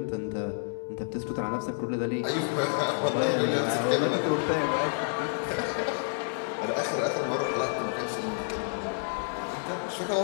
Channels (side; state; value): right; silent; 58 dB below the other